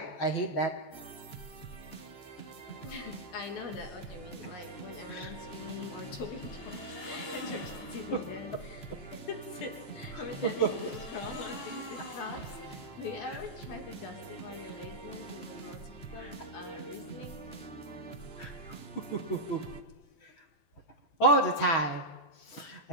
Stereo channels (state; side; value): late; right; 14 ms